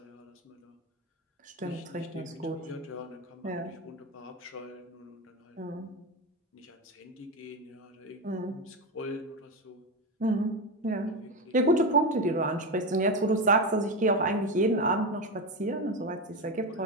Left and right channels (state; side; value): normal; both; correlation 0.16